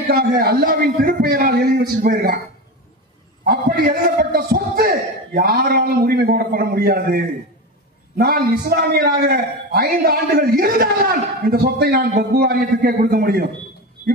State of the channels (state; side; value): normal; both; correlation 0.22